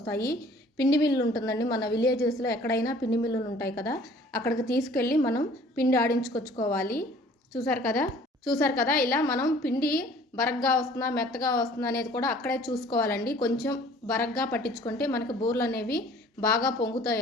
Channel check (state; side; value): normal; both; correlation 0.52